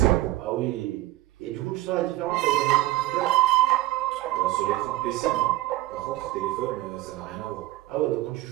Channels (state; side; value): quieter; left; 16.7 dB